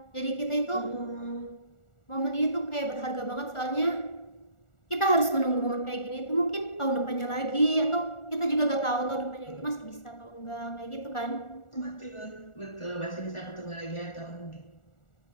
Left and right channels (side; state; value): right; late; 1.4 ms